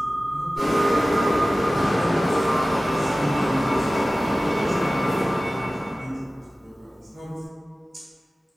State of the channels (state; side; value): normal; both; correlation 0.97